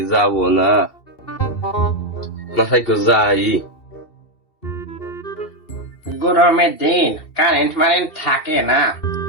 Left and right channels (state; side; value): late; right; 2.7 ms